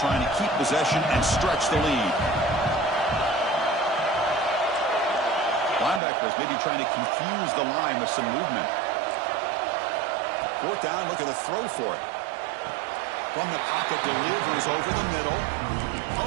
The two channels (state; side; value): drops out; left; at 6.0 s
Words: to keep possession and stretch the lead. Linebackers maybe trying to confuse the line with some movement. Fourth down, look at the throw for it. From the pocket, delivers over the middle. Oh,